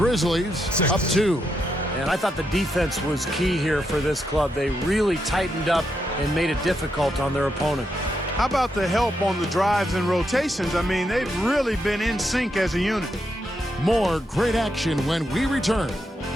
up 2. And I thought the defense was key here for this club. They really tightened up and made it difficult on their opponent. How about the help on the drives and rotations? I mean, they've really been in sync as a unit. More great action when we return.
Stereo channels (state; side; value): normal; both; correlation 0.82